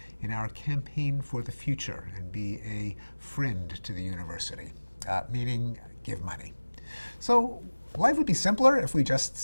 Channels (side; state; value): both; inverted; correlation -1.00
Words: in our campaign for the future and be a friend to the university, meaning give money. So life would be simpler if we just